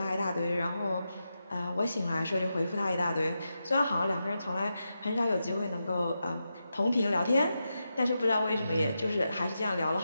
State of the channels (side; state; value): both; inverted; correlation -0.88